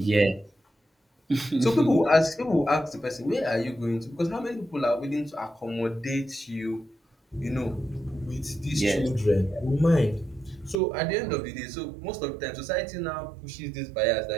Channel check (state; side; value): drops out; left; at 10.8 s